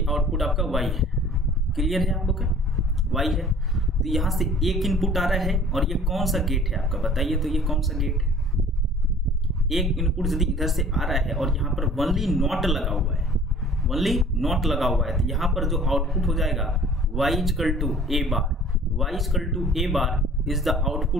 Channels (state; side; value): normal; both; correlation 0.49